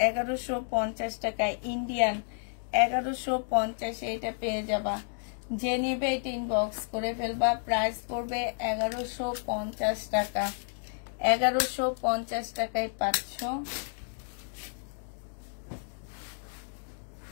1150 টাকায়, ইন্ডিয়ান 1150 এটা পেয়ে যাবা। যে নেবে এটা ইনবক্স করে ফেলবা। প্রাইস পড়বে 1150 টাকা। 1150 টাকায় পাচ্ছ।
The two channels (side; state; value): right; silent; digital silence